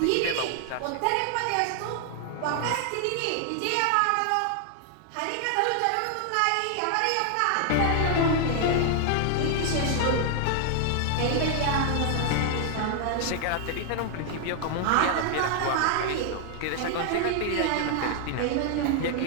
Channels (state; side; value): different; both; correlation 0.00